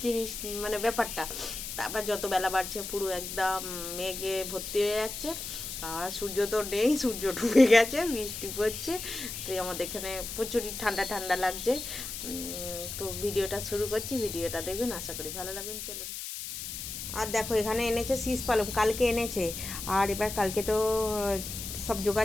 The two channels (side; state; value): left; noise; hiss, 7 dB below the sound